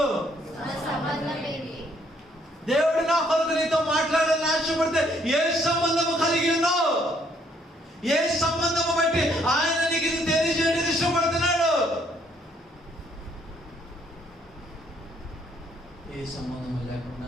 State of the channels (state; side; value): normal; both; correlation 0.67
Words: దేవుడు నా కొరకు నీతో మాట్లాడాలని ఆశపడితే ఏ సంబంధము కలిగి ఉన్నావు? ఏ సంబంధము బట్టి ఆయన నీకు ఇది తెలియజేయడానికి ఇష్టపడుతున్నాడు? ఏ సంబంధము